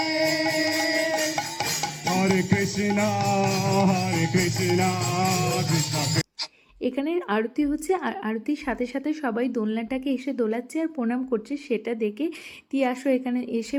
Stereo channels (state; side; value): identical; both; correlation 1.00